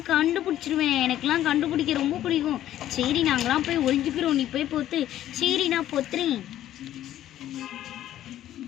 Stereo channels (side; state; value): right; quieter; 12.6 dB